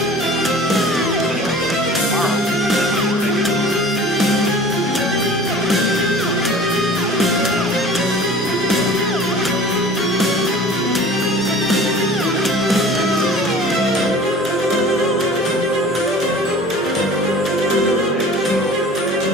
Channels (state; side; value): normal; both; correlation 0.43